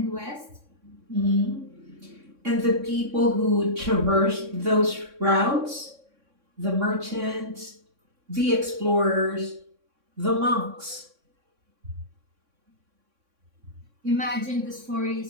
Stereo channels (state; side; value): late; left; 3.6 ms